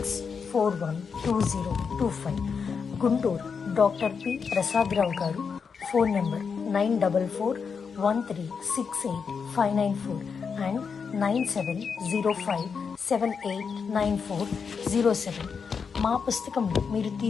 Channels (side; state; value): right; quieter; 5.9 dB